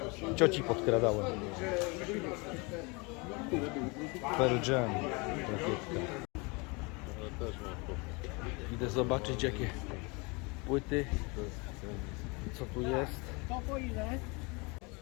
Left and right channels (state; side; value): quieter; right; 28.6 dB